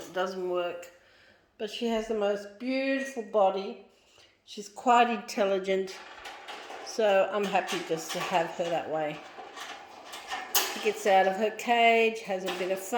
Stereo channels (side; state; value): both; identical; correlation 1.00